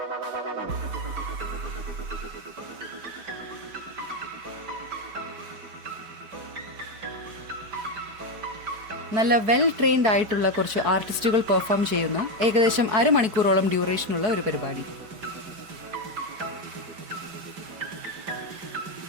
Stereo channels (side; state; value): left; late; 5.1 ms